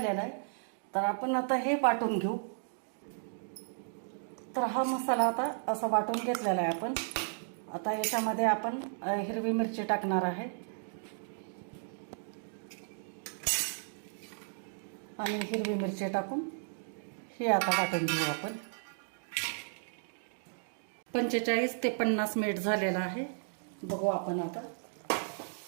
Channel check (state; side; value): silent; left; digital silence